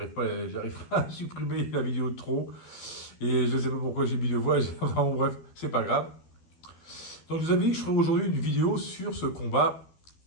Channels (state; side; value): late; right; 12 ms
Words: à supprimer la vidéo de trop. Et je ne sais pas pourquoi j'ai mis 2 fois. Enfin, bon, bref, c'est pas grave. Donc, je vous avais dit que je ferai aujourd'hui une vidéo sur ce combat